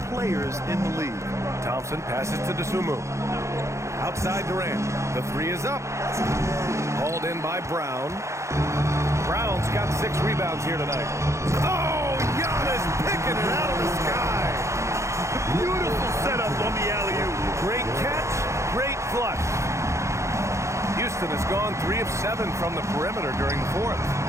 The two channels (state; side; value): late; left; 0.14 ms